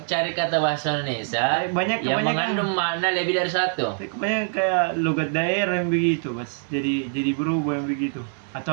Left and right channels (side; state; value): left; silent; digital silence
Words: cari kata bahasa Indonesia Banyak yang kebanyakan. mengandung makna lebih dari satu. Kebanyakan kayak logat daerah yang begitu, Mas. Jadi berubah yang begitu.